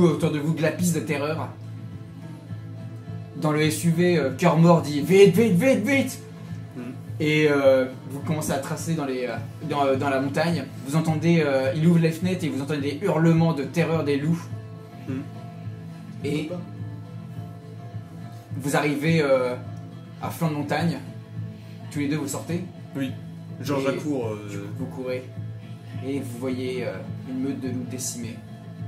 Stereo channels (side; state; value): both; identical; correlation 1.00